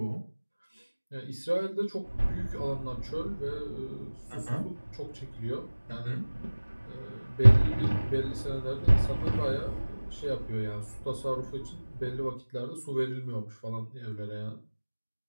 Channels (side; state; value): both; inverted; correlation -1.00